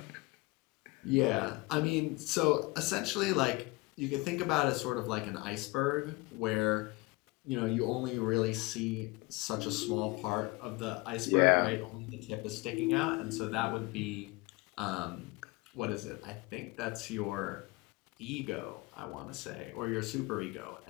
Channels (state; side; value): quieter; right; 23.8 dB